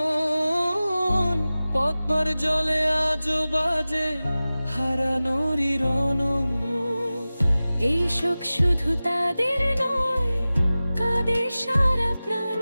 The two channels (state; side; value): inverted; both; correlation -0.97